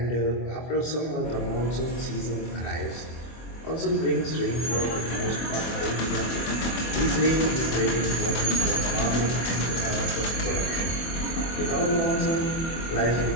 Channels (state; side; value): late; right; 24 ms